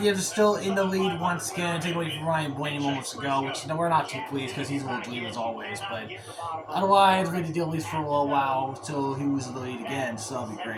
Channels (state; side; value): identical; both; correlation 1.00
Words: is still in the lead once again, taking away from Ryan Blaney moments ago, which we're not too pleased because he's in the lead as always. But otherwise, we had to deal at least for a little while until he was in the lead again, so that'll be